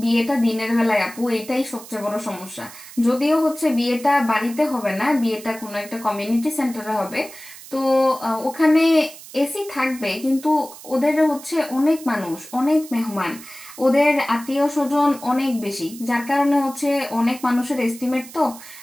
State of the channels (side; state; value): right; noise; hiss, 17 dB below the sound